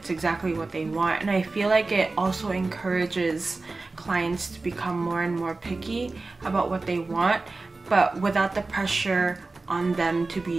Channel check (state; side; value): quieter; left; 3.5 dB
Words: exactly what they want. And I feel like it also encourages clients to become more and more picky about what they want, but without the pressure on them to